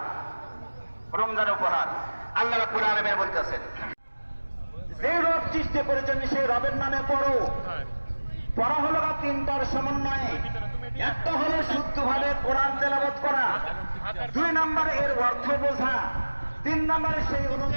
রমজানের উপহার আল্লাহ রাব্বুল আলামিন বলতেছেন, যে রব সৃষ্টি করেছেন সেই রবের নামে পড়ো। পড়া হলো তিনটার সমন্বয়ে। একটা হলো শুদ্ধভাবে কোরআন তেলাওয়াত করা, দুই নম্বরে এর অর্থ বোঝা, তিন নম্বরে সেই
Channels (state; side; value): inverted; both; correlation -1.00